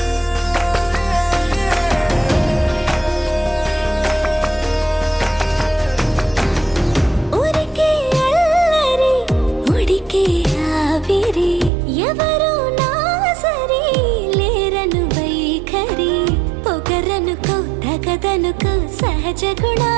ఊరికే అల్లరి ఉడికే ఆవిరి, ఎవరు నా సరి లేరను వైఖరి, పొగరనుకో తగదనుకో సహజ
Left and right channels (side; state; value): left; drops out; at 11.7 s